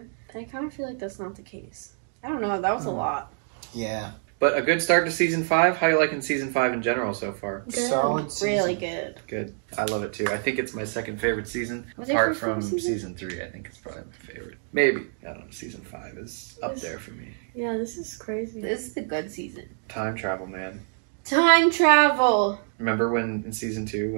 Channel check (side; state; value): left; silent; digital silence